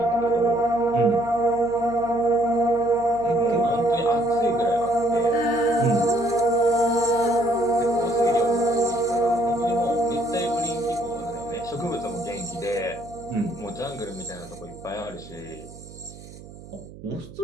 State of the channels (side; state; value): right; noise; hum, 17 dB below the sound